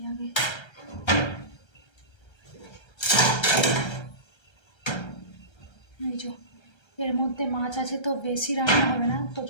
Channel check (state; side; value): late; right; 1.3 ms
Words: আগে। এই যে এর মধ্যে মাছ আছে, তো বেশি রান্না হবে না, তো